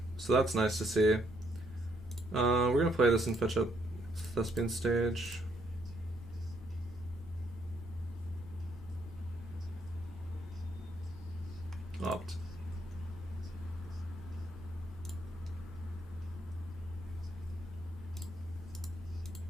so that's nice to see. We're gonna play this and fetch up Thespian Stage. Opt.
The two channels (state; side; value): normal; both; correlation 0.71